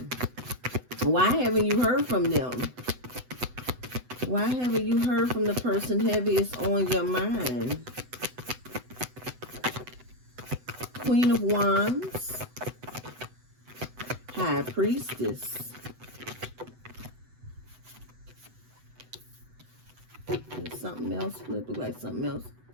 why haven't you heard from them? Why haven't you heard from the person heaviest on your mind? Queen of Wands. High Priestess. And something else flip. Look like something else.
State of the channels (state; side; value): late; left; 8.0 ms